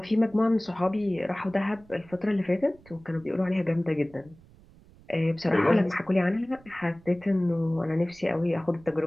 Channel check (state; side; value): noise; right; rumble, 25 dB below the sound